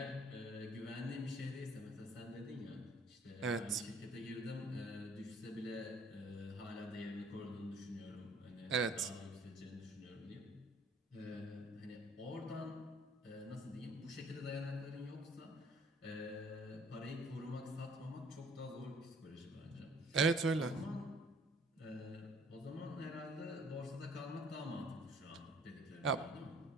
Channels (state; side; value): normal; both; correlation 0.57